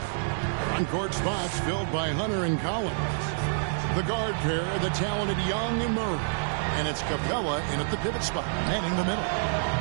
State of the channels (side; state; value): left; silent; 60 dB below the other